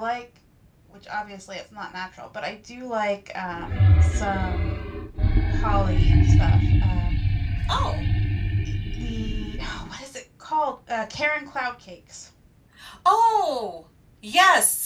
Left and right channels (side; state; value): both; identical; correlation 1.00